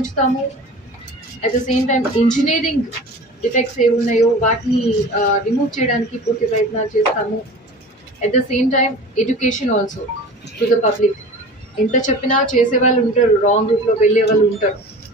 At the same time engineering defects ఏ ఉన్నాయో వాటిని రిమూవ్ చేయడానికి పూర్తి ప్రయత్నాలు చేస్తాము. At the same time education also to the public. ఎంత చెప్పినా చేసే వాళ్ళు ఉంటారు, రాంగ్ రూట్లో వెళ్ళే వాళ్ళు ఉంటారు.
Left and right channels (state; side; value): normal; both; correlation 0.38